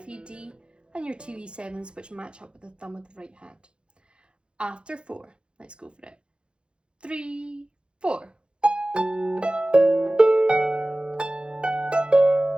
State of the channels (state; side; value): late; left; 0.055 ms